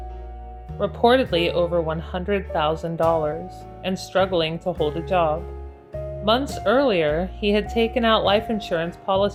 reportedly over $100,000, and struggling to hold a job. Months earlier, he had taken out life insurance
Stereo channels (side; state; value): both; identical; correlation 1.00